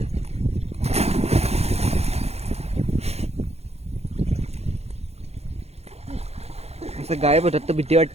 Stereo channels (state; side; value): late; left; 0.31 ms